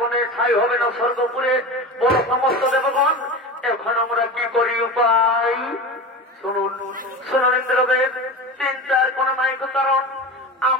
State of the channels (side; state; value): both; normal; correlation 0.28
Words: ঠাই হবে না স্বর্গপুরে। বড় সমস্ত দেবগণ এখন আমরা কি করি উপায়? শুনুন শুনুন ইন্দ্রদেব, চিন্তার কোন নায়ক কারণ